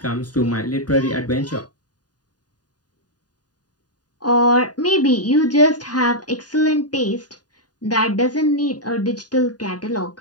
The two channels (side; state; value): right; late; 0.69 ms